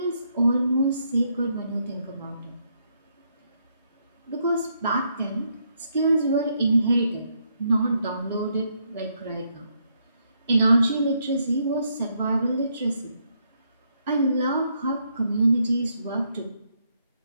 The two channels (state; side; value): inverted; both; correlation -0.76